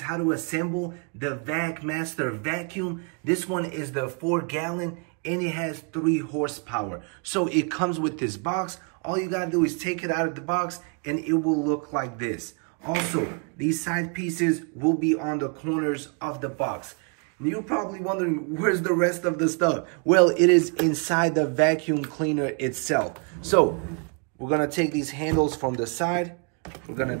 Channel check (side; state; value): left; quieter; 37.9 dB